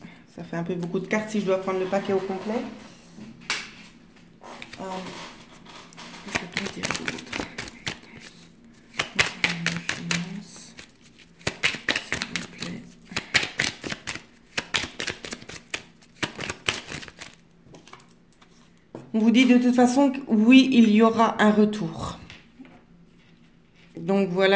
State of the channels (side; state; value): both; identical; correlation 1.00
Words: Ça fait un peu beaucoup de cartes si je dois prendre le paquet au complet. On vous dit de toute façon que oui, il y aura un retour. Donc